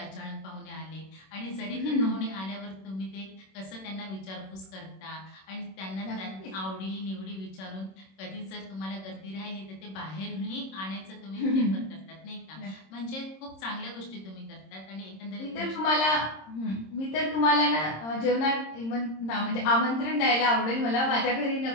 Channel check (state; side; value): late; right; 26 ms